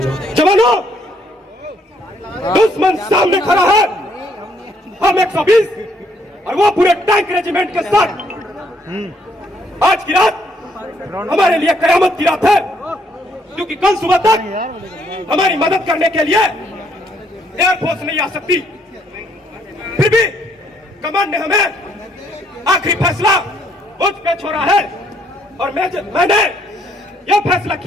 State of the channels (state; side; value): normal; both; correlation 0.69